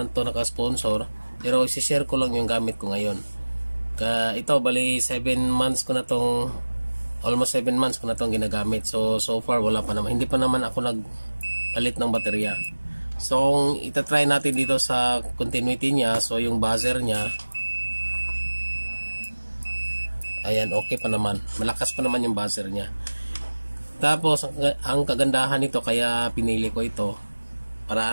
to naka-sponsor, pero i-share ko lang yung gamit ko ngayon. Ito bali 7 months ko na tong, almost 7 months ko na tong ginagamit. So far wala pa naman, hindi pa naman ako nagpalit ng baterya. So kung itatry natin dito sa continuity niya, so yung buzzer niya, ayan, okay pa naman, malakas pa naman yung buzzer niya. Tapos ang kagandahan nito, kaya pinili ko ito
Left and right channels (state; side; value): inverted; both; correlation -1.00